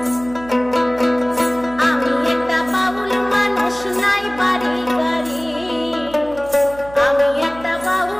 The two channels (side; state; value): right; noise; hum, 19 dB below the sound